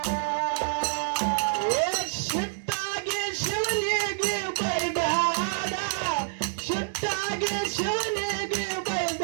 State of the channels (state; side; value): silent; left; 60 dB below the other